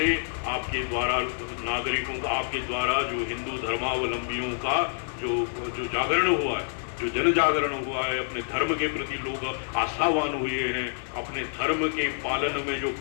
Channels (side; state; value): right; silent; digital silence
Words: आपके द्वारा नागरिकों का, आपके द्वारा जो हिंदू धर्मावलंबियों का जो जागरण हुआ है, जो जन जागरण हुआ है, अपने धर्म के प्रति लोग आस्थावान हुए हैं, अपने धर्म के पालन में जो